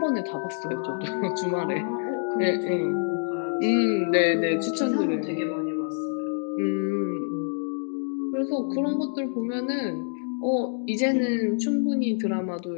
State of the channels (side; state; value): right; silent; digital silence